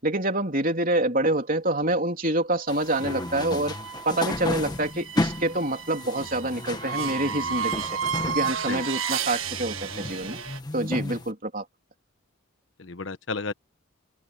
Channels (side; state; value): both; normal; correlation 0.11